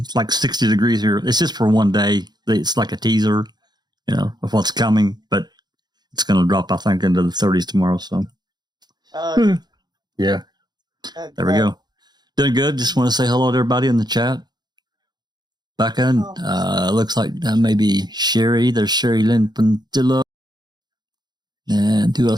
like 60 degrees here. It's just for one day. It's like a teaser, of what's coming, but it's going to drop, I think, into the 30s tomorrow. So, yeah. Okay. There we go. Doing good. Just want to say hello to everybody in the chat. Becca, looks like maybe Sherry. There's Sherry Lynn Pantillo. And who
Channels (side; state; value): left; late; 0.20 ms